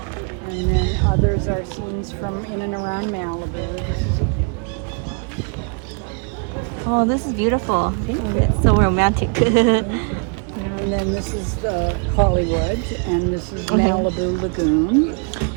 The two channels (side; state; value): left; quieter; 37.4 dB